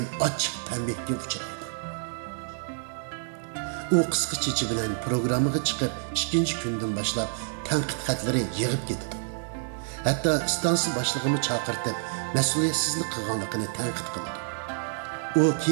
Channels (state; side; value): silent; left; digital silence